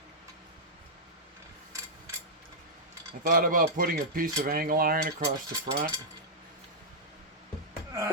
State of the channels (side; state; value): both; normal; correlation -0.08